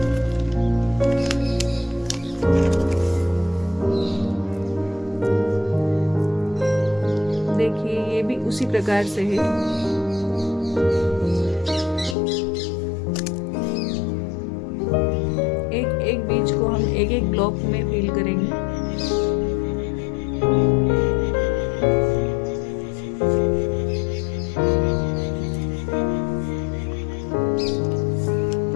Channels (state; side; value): drops out; right; at 12.2 s